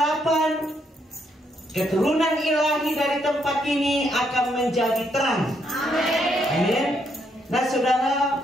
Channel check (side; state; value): both; normal; correlation 0.75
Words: keturunan ilahi dari tempat ini akan menjadi terang. Amin. Nah, saudara,